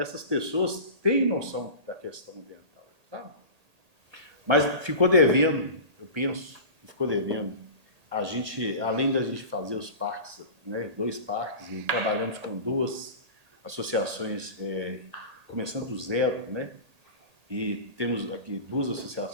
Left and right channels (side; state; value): left; late; 1.8 ms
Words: pessoas têm noção da questão ambiental, sabe? Mas ficou devendo, eu penso, ficou devendo. A gente, além da gente fazer os parques, né, 2 parques, e trabalhamos com 2 associações, começando do zero, né? E temos aqui 2